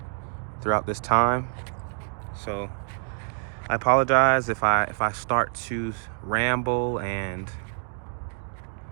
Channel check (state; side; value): silent; left; 60 dB below the other